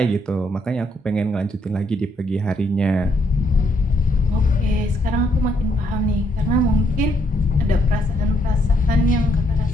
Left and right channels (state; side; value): normal; both; correlation 0.73